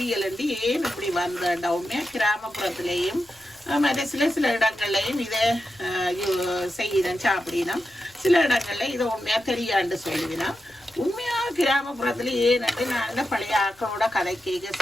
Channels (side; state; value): left; noise; rumble, 30 dB below the sound